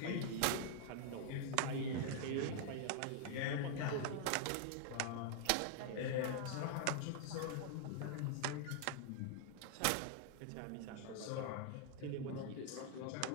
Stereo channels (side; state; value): both; different; correlation -0.01